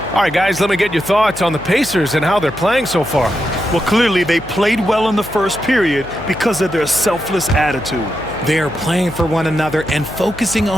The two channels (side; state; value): left; noise; hum, 16 dB below the sound